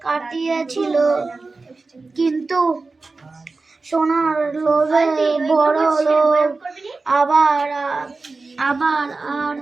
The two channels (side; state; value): left; quieter; 3.8 dB